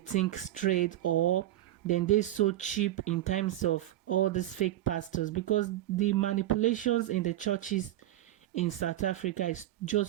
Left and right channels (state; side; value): quieter; left; 13.9 dB